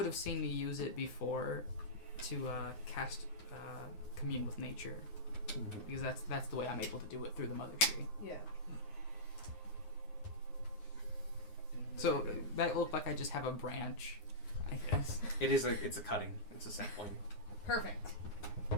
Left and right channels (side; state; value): right; late; 9.6 ms